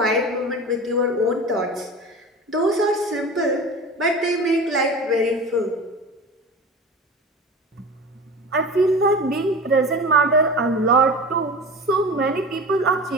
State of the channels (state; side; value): normal; both; correlation 0.33